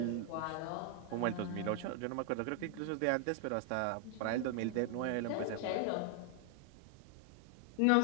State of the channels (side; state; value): both; different; correlation 0.00